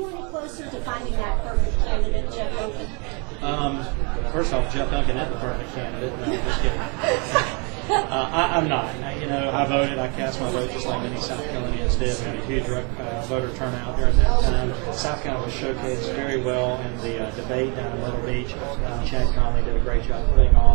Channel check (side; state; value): left; quieter; 33.2 dB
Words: any closer to finding that perfect candidate, Jeff Duncan? First off, Jeff Duncan is the perfect candidate. No, I'm just kidding. I'm not. I voted. I cast my vote just like many South Carolinians did. We had a huge voter turnout during that time. South Carolina was showcased very well in the debate down in Myrtle Beach. Chad Conley did a great job putting